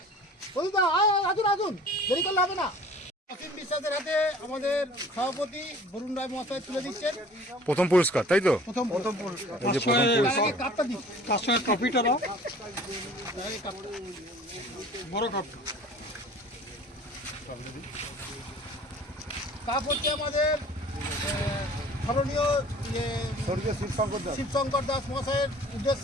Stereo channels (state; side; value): normal; both; correlation 0.48